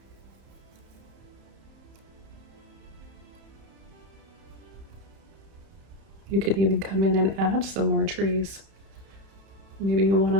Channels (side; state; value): left; late; 31 ms